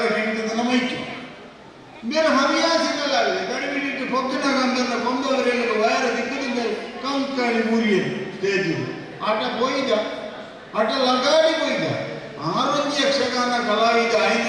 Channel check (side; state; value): both; identical; correlation 1.00